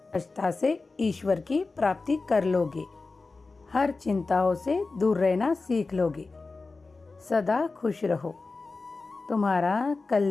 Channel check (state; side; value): quieter; right; 3.8 dB